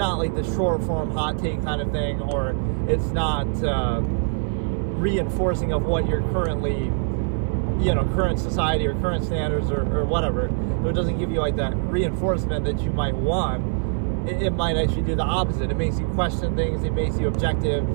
like the short form hot take kind of thing, or it's not reinforcing of what you're currently, current society or current standards or whatever. So it doesn't give you like that reinforcement that you might want. It might actually do the opposite. It makes you question things, it makes you objective,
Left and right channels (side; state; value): left; silent; 63 dB below the other